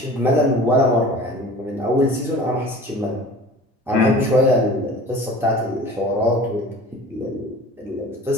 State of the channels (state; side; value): normal; both; correlation 0.42